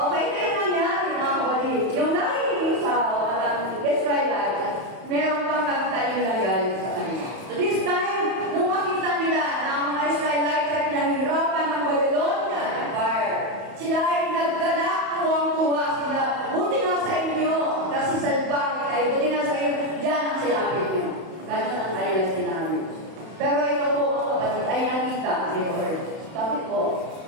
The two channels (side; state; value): left; late; 31 ms